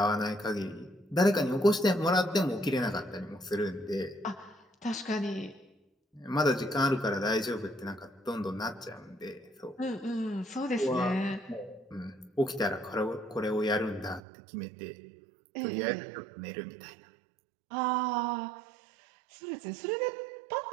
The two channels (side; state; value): left; drops out; at 14.2 s